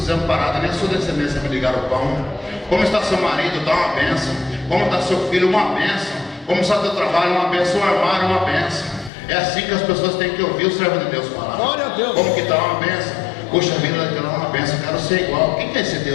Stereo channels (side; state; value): right; drops out; at 9.1 s